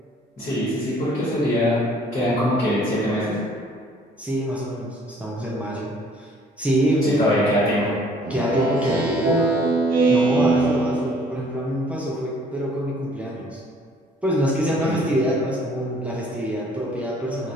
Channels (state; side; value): normal; both; correlation 0.58